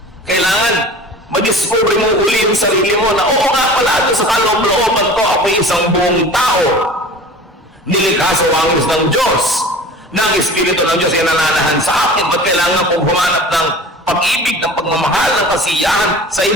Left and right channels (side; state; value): both; normal; correlation 0.40